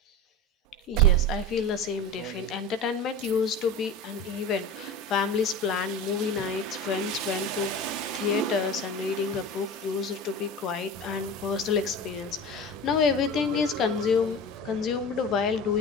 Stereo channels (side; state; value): both; normal; correlation 0.31